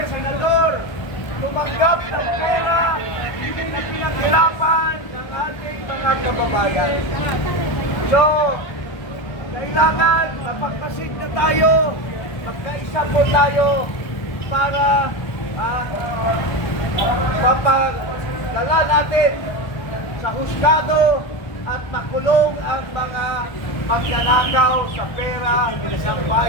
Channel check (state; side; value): late; right; 1.3 ms